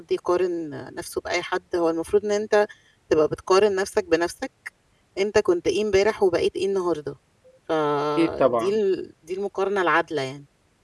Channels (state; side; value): identical; both; correlation 1.00